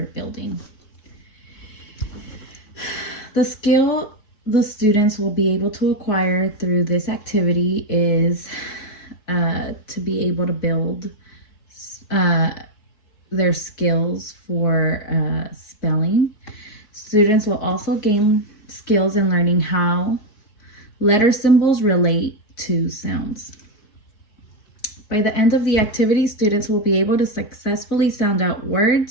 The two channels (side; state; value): right; late; 4.7 ms